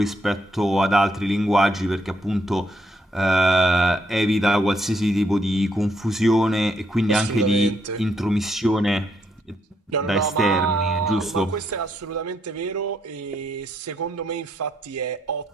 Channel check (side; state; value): both; normal; correlation 0.75